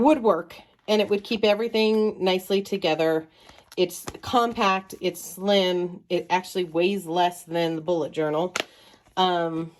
work and it would keep everything nicely together. It's compact, it's slim, it actually weighs less than the bullet journal.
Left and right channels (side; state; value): both; identical; correlation 1.00